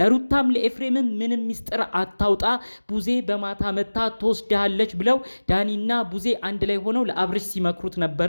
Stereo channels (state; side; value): inverted; both; correlation -1.00